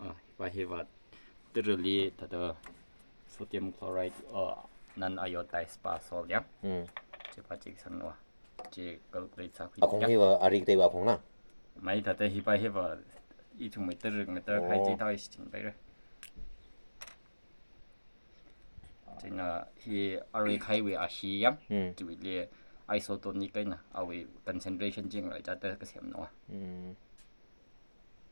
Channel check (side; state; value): both; inverted; correlation -1.00